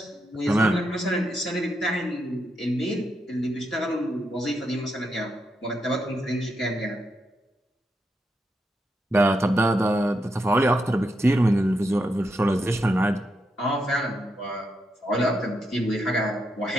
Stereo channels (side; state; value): both; normal; correlation 0.82